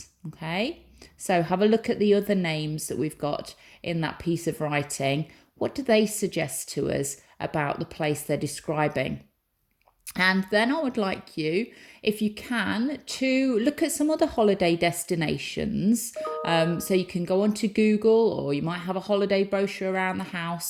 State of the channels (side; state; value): both; identical; correlation 1.00